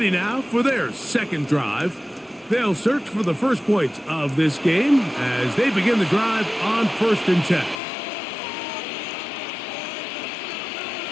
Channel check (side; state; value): right; drops out; at 7.8 s